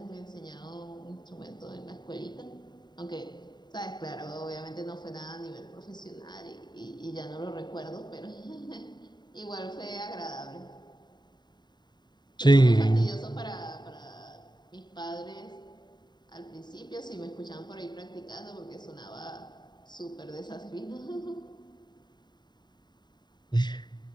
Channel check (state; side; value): late; right; 0.21 ms